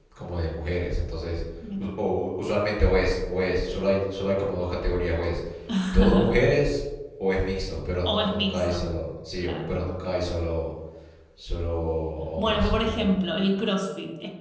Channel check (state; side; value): identical; both; correlation 1.00